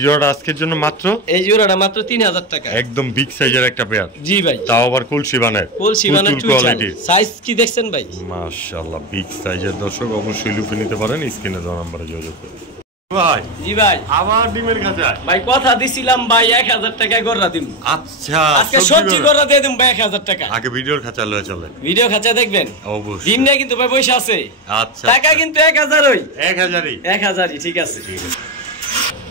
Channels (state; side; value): normal; both; correlation 0.14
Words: জোড়াটা আজকের জন্য মাত্র, এই জোড়াটা মাত্র 3000 টাকা, একদম বিগ সাইজের একটা পেয়ার। জি ভাই, তাও আবার কলসিবানের, কলসিবানের কোয়ালিটি। সাইজ কি দেখছেন ভাই, মাশাআল্লাহ বিগ সাইজের। দর্শক অবশ্যই লুফে নিতে পারেন, স্ক্রিনে দেওয়া নম্বরে যোগাযোগ করুন। ভাই জি ভাই আবার ডিমের খাঁচা ভাই কথা দিছিলাম ভাই 1000 টাকা গড়া দিন। আচ্ছা আজকে সবজি গড়া দিয়ে দিম ভাই 1000 টাকা। আগে ভিডিওর খাঁচা লয়ে চলেন, ভিডিও খাঁচা দেখবেন অবশ্যই। ডিম নিয়ে কিন্তু ভাই পয়সা আছে। আচ্ছা টাকা কিন্তু 1000 ওই 1000ই ঠিক আছে।